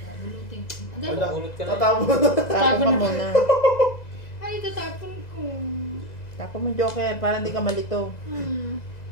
bunutin ko. Wala. Bunot ka na. Tatapon. Tapon mo muna. Ay, tatapon ko. Tapon mo, Joker, para hindi ka malito.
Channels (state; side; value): late; right; 2.0 ms